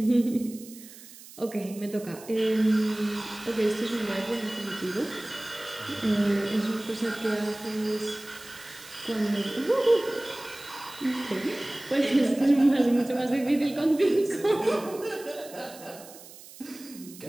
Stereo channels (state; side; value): noise; right; hiss, 18 dB below the sound